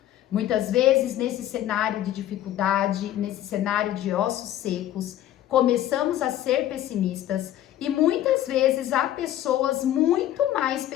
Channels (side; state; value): right; quieter; 12.5 dB